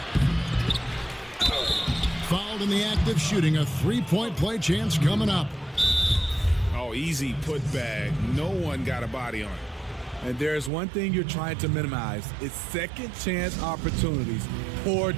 Fouled in the act of shooting. A three-point play chance coming up. Oh, easy putback. No one got a body on it. And there's one thing you're trying to minimize. It's second chance opportunities. Poor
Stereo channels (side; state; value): left; drops out; at 10.7 s